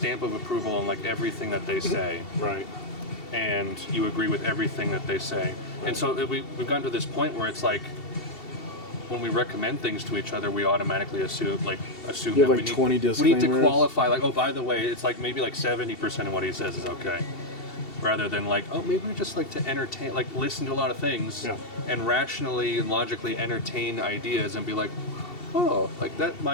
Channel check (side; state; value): right; late; 2.7 ms